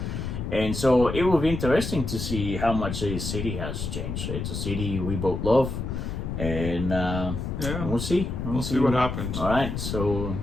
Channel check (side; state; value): left; noise; rumble, 4 dB below the sound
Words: And so it will be interesting to see how much the city has changed. It's a city we both love. And we'll see. We'll see what happens. All right. So